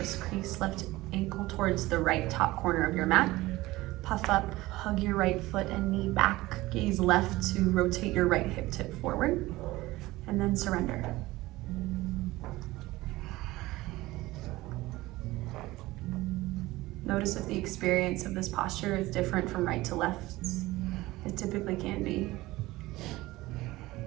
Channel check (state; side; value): quieter; left; 18.8 dB